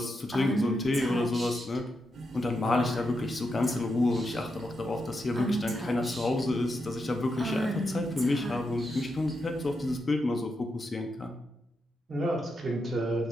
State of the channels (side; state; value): both; normal; correlation 0.84